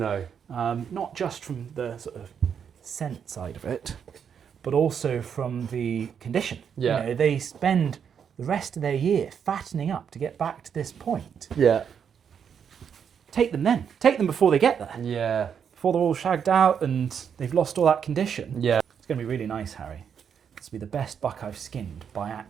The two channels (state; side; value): quieter; left; 7.6 dB